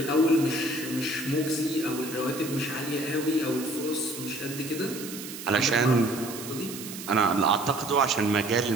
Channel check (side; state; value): right; noise; hiss, 11 dB below the sound